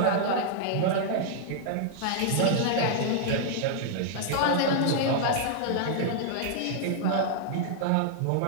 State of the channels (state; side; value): different; both; correlation -0.01